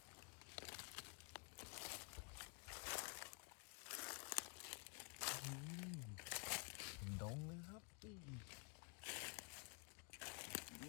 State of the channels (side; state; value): right; quieter; 35.1 dB